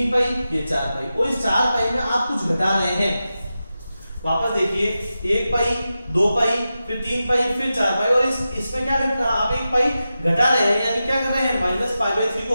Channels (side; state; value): both; inverted; correlation -0.92